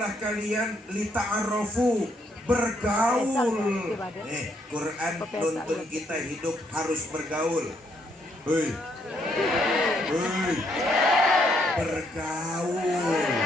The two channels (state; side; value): normal; both; correlation 0.72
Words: kalian lita'arofu, bergaul. Quran nuntun kita hidup harus bergaul. Hei, hei, bergaul.